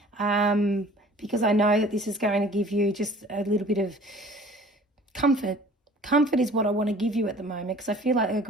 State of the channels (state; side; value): normal; both; correlation 0.49